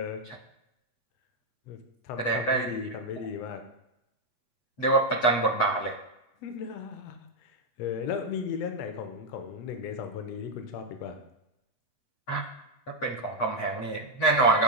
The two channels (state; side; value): late; right; 8.1 ms